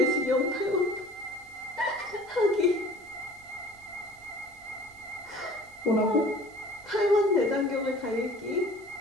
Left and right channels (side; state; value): right; noise; hiss, 28 dB below the sound